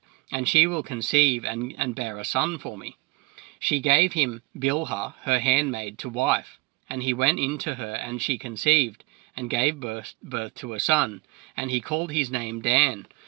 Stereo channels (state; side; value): quieter; left; 26.3 dB